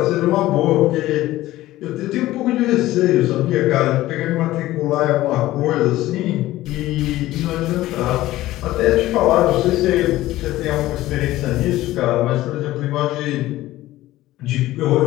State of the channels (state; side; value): quieter; right; 16.1 dB